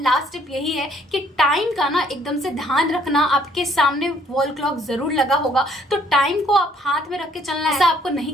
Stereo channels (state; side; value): normal; both; correlation 0.63